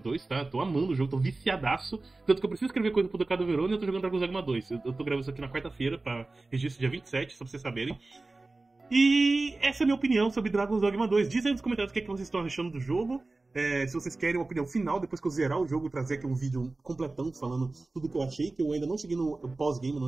tá? Tô amando o jogo, tô viciadaço. Tanto que eu preciso escrever coisa pro Ducado Verona e eu tô jogando Dragon's Dogma 2. Eu tô gravando isso aqui na quarta-feira, pra registro dia 27, só pra vocês saberem. E essa é a minha opinião sobre Dragon's Dogma 2. Diz aí nos comentários o que, é que vocês estão achando do jogo. Se vocês querem uma opinião final, depois que eu zerar o jogo, trazer aqui um vídeo completão falando tudo que eu achei, que eu ainda não cheguei no pós-game, no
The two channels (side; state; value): left; quieter; 3.3 dB